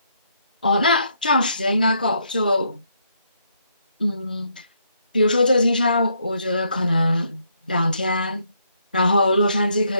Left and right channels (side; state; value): both; inverted; correlation -0.73